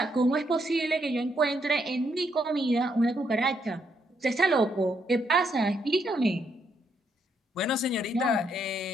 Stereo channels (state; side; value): normal; both; correlation 0.75